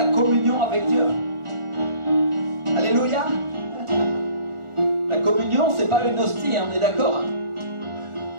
communion avec Dieu. Alléluia. La communion, c'est pas une hostie, on est d'accord.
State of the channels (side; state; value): left; late; 1.4 ms